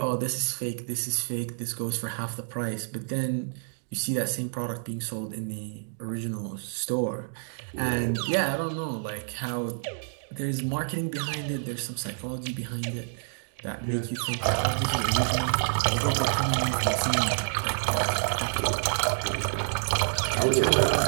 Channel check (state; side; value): silent; left; digital silence